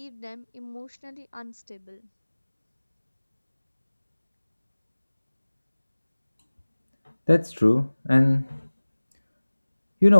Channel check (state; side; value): inverted; both; correlation -1.00